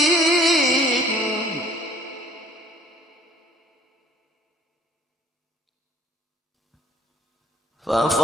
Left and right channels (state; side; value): normal; both; correlation 0.56